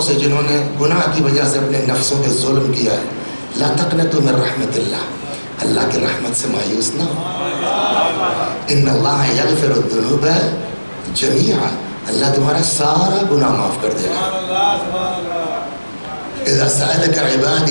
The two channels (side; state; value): both; inverted; correlation -1.00